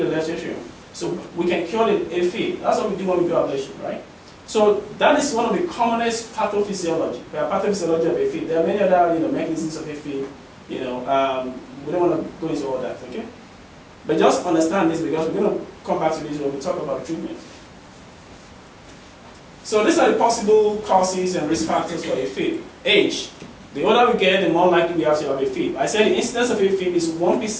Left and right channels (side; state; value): both; identical; correlation 1.00